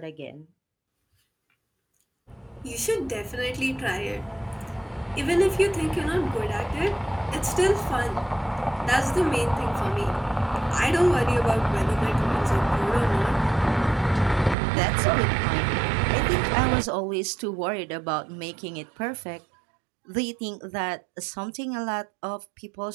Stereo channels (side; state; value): left; drops out; at 14.6 s